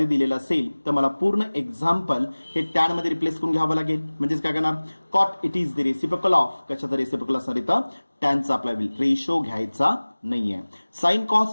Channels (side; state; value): both; inverted; correlation -1.00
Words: दिलेलं असेल तर मला पूर्ण एक्झाम्पल हे टॅन मध्ये रिप्लेस करून घ्यावं लागेल. म्हणजेच काय करणार, cot it is the reciprocal of, कशाचा रेसिप्रोकल असणार इथं? टॅनचा आपला रेशो घ्यायचा नाहीये. Sine